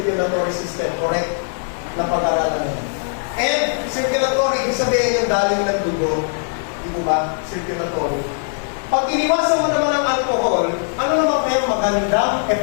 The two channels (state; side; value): silent; right; digital silence